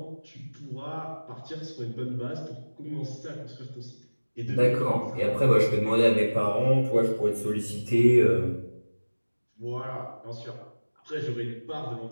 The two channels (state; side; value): inverted; both; correlation -1.00